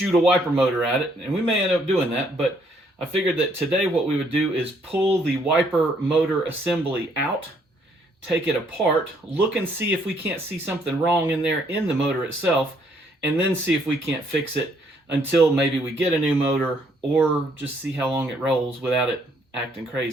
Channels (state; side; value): normal; both; correlation 0.68